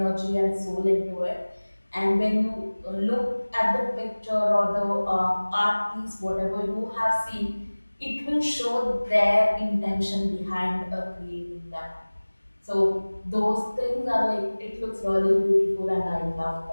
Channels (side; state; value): both; inverted; correlation -1.00